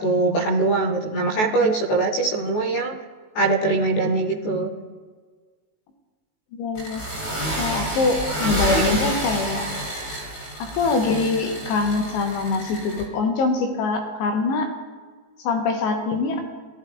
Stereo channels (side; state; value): right; late; 19 ms